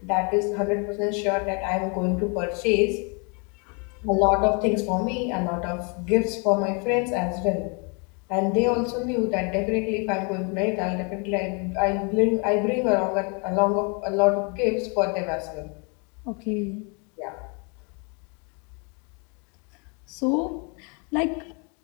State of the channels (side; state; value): right; quieter; 34.7 dB